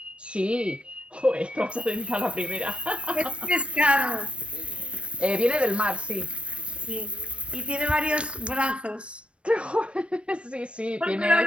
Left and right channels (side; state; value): left; late; 0.060 ms